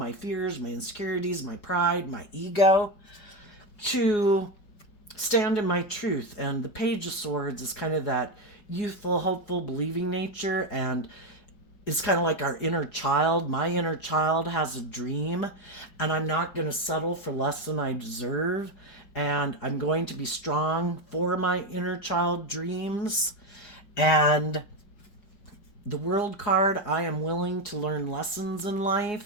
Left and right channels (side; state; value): right; late; 4.8 ms